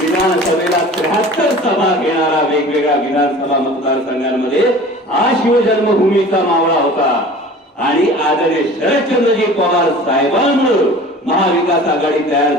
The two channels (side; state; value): both; normal; correlation 0.42